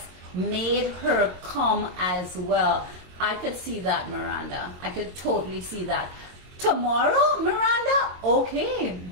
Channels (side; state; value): left; late; 22 ms